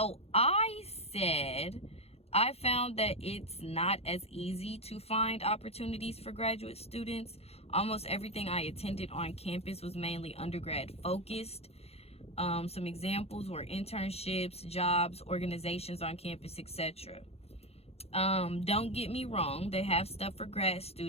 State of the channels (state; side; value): late; right; 0.29 ms